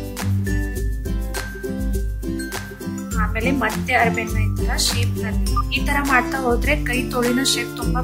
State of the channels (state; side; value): identical; both; correlation 1.00